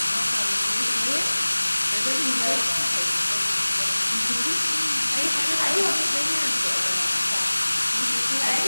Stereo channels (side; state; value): both; inverted; correlation -1.00